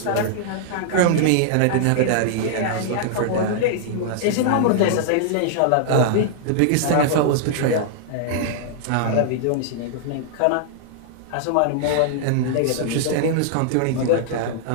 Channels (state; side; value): different; both; correlation -0.01